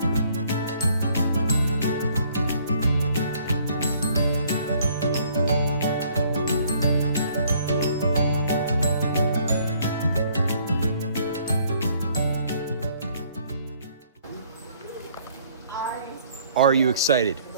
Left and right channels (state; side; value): inverted; both; correlation -0.62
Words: Are you excited